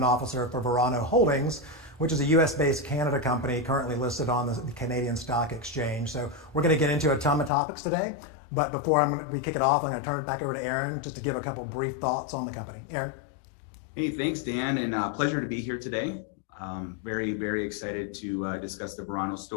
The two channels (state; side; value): drops out; right; at 7.5 s